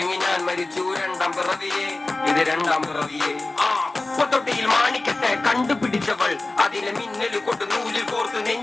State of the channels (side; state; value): right; quieter; 3.0 dB